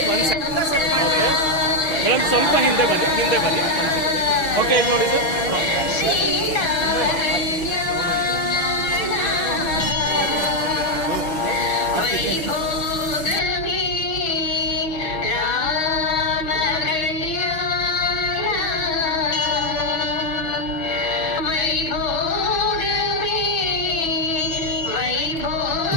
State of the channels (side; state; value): right; late; 6.1 ms